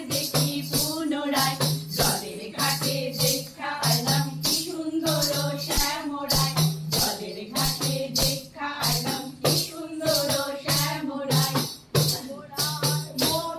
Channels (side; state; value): both; identical; correlation 1.00